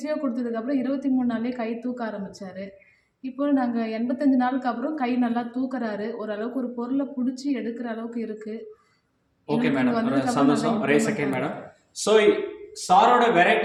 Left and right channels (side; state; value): both; identical; correlation 1.00